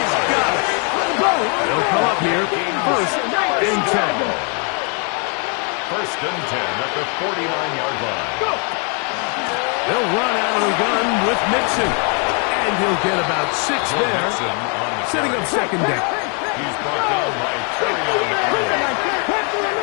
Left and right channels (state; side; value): quieter; right; 37.9 dB